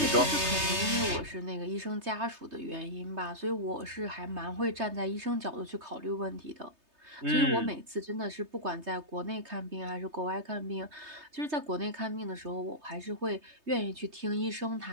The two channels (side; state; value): left; late; 3.2 ms